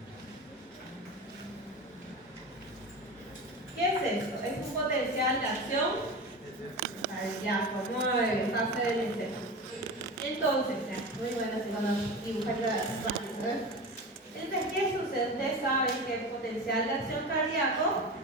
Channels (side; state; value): both; normal; correlation 0.28